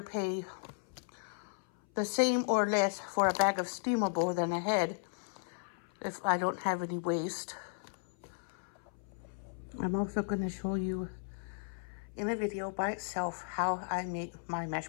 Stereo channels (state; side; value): silent; right; 54 dB below the other